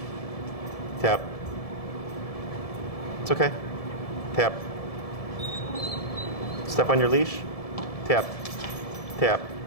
Tap. It's okay. Tap. Step on your leash. Tap. Tap.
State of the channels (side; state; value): right; late; 1.7 ms